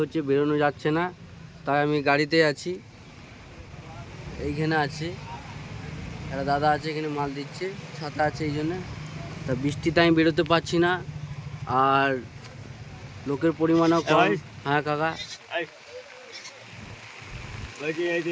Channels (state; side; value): identical; both; correlation 1.00